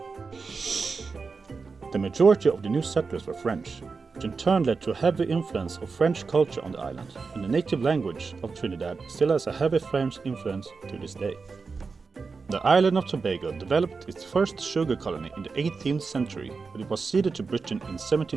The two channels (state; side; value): quieter; left; 4.7 dB